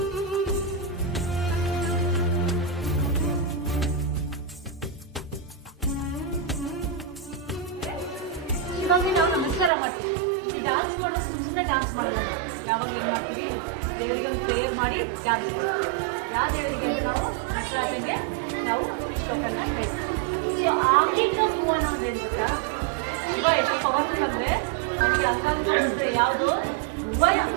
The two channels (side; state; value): left; drops out; at 9.7 s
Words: ಇವಾಗ ನಾವು ನಮಸ್ಕಾರ ಮಾಡ್ತೀವಿ. ಈ ಡ್ಯಾನ್ಸ್ ಮಾಡೋದು ಸುಮ್ಮನೆ ಡ್ಯಾನ್ಸ್ ಮಾಡೋದು. ಯಾವಾಗ ಏನು ಮಾಡ್ತೀವಿ? ದೇವರಿಗೆ ಒಂದು ಪ್ರೇಯರ್ ಮಾಡಿ ಡ್ಯಾನ್ಸ್ ಮಾಡ್ತೀವಿ. ಯಾವ ದೇವರಿಗೆ ಅಂದ್ರೆ ನಾವು ನಟರಾಜಂಗೆ ನಾವು ಶ್ಲೋಕನ ಹೇಳ್ತೀವಿ. ಆಂಗಿಕ ಮೂವಣ್ಣ ಅಂತ ಹೇಳ್ತೀರಾ? ಶಿವ ಎಷ್ಟು ಪವರ್ಫುಲ್ ಅಂದ್ರೆ ನನಗೆ ಅಂಗಾಂಗ ಯಾವುದು ಭುವನ,